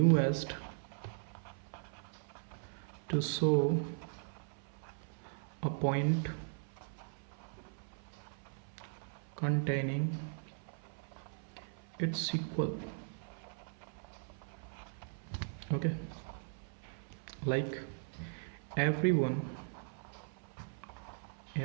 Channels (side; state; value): left; silent; 52 dB below the other